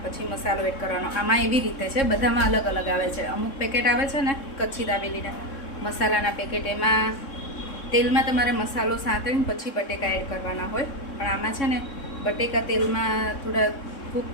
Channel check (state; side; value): late; right; 3.7 ms